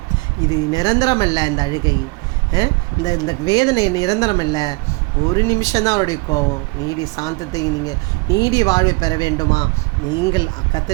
இது நிரந்தரமல்ல, இந்த அழுகை, இந்த வேதனை நிரந்தரமல்ல. ஒரு நிமிஷம்தான் அவருடைய கோபம். நீடி சாந்தத்தை, நீங்கள் நீடி வாழ்வை பெற வேண்டுமா, நீங்கள்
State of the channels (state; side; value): quieter; left; 27.8 dB